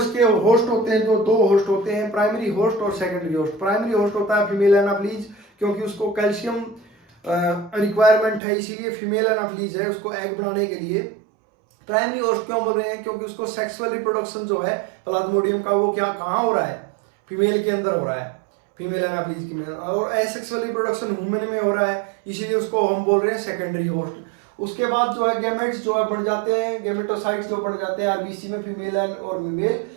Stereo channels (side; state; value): left; drops out; at 8.4 s